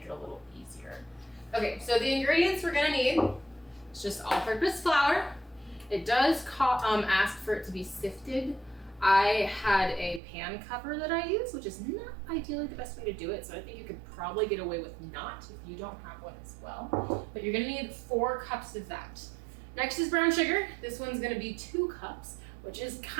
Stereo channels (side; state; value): left; drops out; at 10.2 s